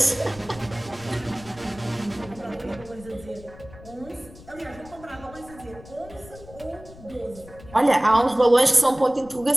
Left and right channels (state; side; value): noise; left; rumble, 19 dB below the sound